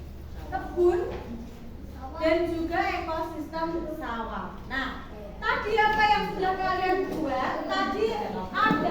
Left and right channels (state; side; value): identical; both; correlation 1.00